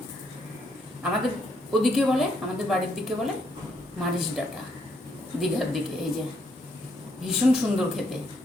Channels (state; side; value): normal; both; correlation 0.74